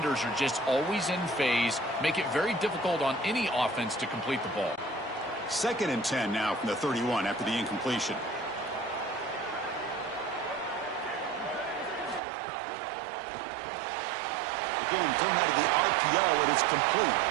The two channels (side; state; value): left; drops out; at 12.2 s